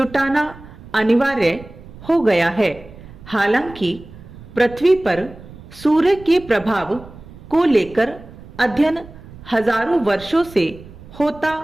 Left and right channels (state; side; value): noise; right; rumble, 18 dB below the sound